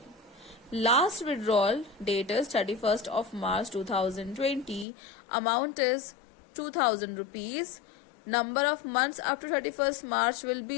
Last withdrawal date is 31st of March 2020. Amount is 2000 rupees. Number of months up to 31st March will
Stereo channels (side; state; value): right; drops out; at 4.9 s